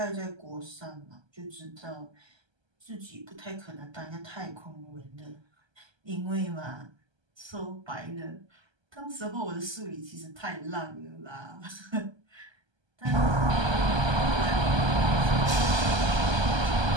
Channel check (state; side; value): late; left; 1.3 ms